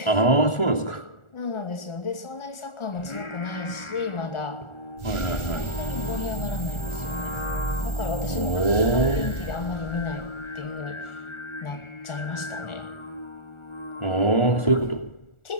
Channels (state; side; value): late; right; 1.4 ms